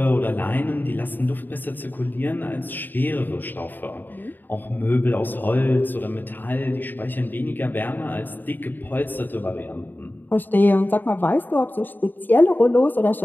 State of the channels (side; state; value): right; late; 0.090 ms